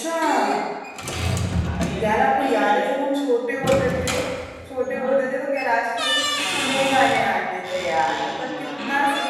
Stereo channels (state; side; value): identical; both; correlation 1.00